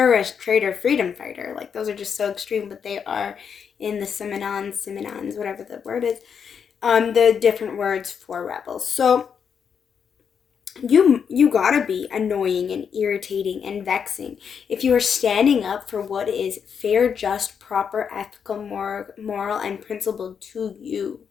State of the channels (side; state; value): right; quieter; 7.0 dB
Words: traitor, freedom fighter. Like, those are just so extreme, but they are in the synonyms, whatever the word is, the different words for rebels. So you gotta be annoying and irritating and vexing if you are standing up for what is fair, just, proper, ethical, moral, and principled to you.